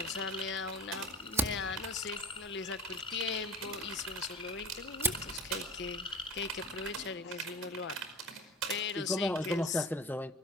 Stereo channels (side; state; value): both; normal; correlation 0.36